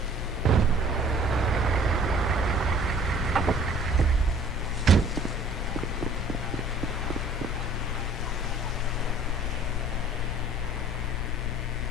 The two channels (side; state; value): both; normal; correlation 0.52